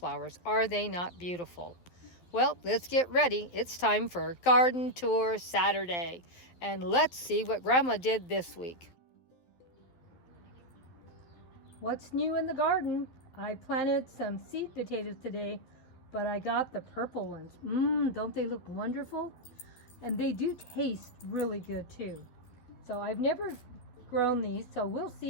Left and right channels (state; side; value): late; right; 12 ms